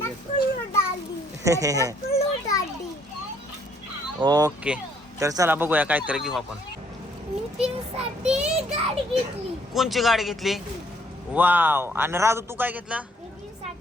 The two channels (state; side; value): normal; both; correlation 0.65